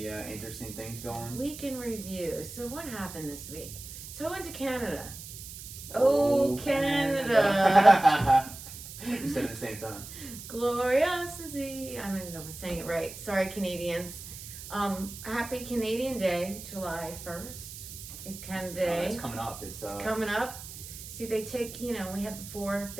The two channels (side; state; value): right; noise; hiss, 12 dB below the sound